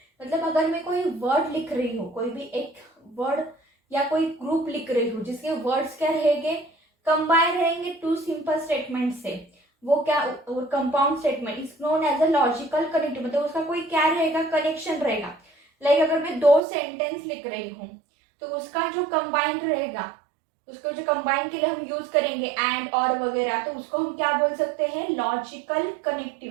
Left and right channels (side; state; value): left; drops out; at 16.6 s